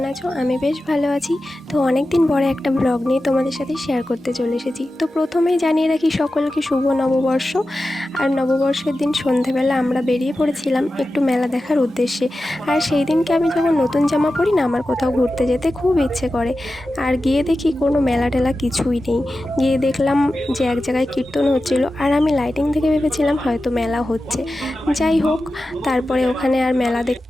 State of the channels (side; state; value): both; normal; correlation 0.93